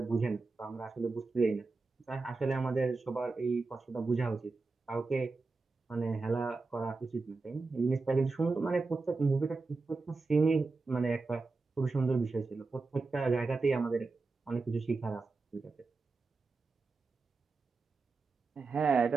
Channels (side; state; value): left; quieter; 3.9 dB